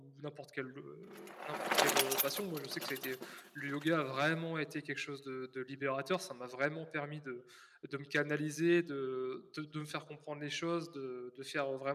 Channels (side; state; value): both; identical; correlation 1.00